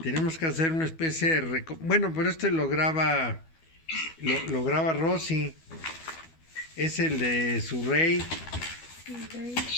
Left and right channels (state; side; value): late; right; 12 ms